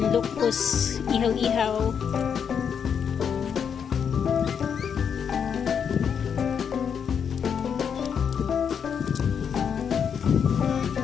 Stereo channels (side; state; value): right; quieter; 7.3 dB